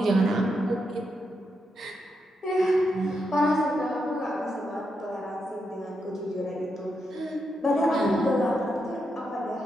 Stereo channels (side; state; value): both; normal; correlation 0.83